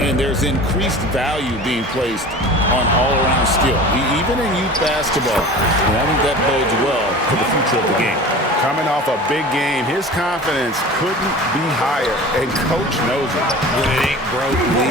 And there's increased value being placed on all-around skill, even in youth basketball. And I think that bodes well for the future of the game. Coming off a big game, his confidence couldn't be higher, and Coach knows it. When it ain't broke,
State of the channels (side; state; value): both; normal; correlation 0.38